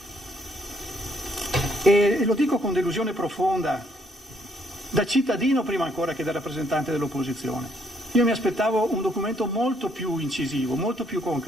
E lo dico con delusione profonda, da cittadino prima ancora che da rappresentante dell'opposizione. Io mi aspettavo un documento molto più incisivo, molto più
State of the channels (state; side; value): normal; both; correlation 0.69